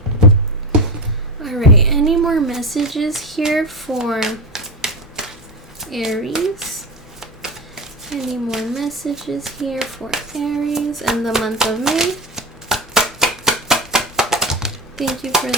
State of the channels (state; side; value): normal; both; correlation 0.21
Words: All right, any more messages here for Aries? Any more messages here for Aries in the month of May? Thank you for